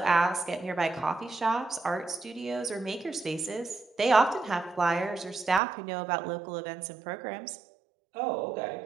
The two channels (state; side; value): drops out; left; at 5.6 s